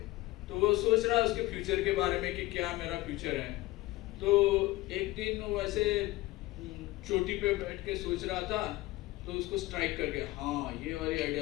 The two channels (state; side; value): quieter; right; 18.7 dB